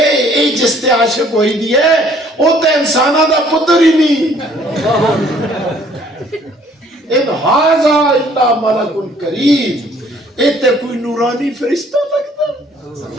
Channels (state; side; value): normal; both; correlation 0.59